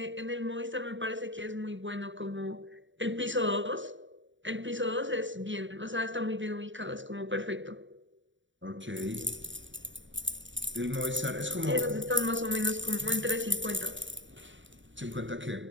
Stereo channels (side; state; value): left; late; 0.55 ms